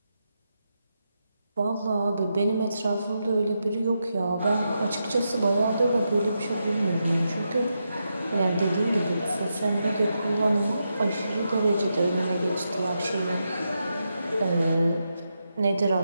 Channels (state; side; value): inverted; both; correlation -0.85